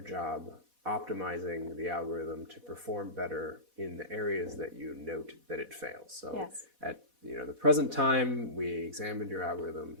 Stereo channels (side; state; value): left; late; 4.1 ms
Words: job optimizing the algorithm to perform better in the areas that you note that it fails. So at the present time we examined your algorithm